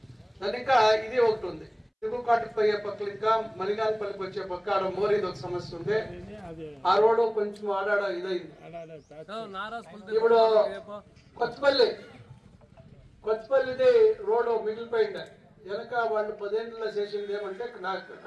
దాని ఇంకా ఇది ఒకటి ఉంది. దిగుకాటుకు పోయే పక్కలు ఇంకా మలిగానపల్లికి వచ్చే పక్క ఆడ మోరీది ఒక సమస్య ఉంది. ఆ రోడ్డు కొంచెం ఆడాడ ఇదైంది. ఇప్పుడు కొత్తపల్లిది రోడ్డు మిగిలిపోయింది. వెనక వాళ్ళు 10 ఏళ్ళలో చేసింది ఏమంటే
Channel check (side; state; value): both; identical; correlation 1.00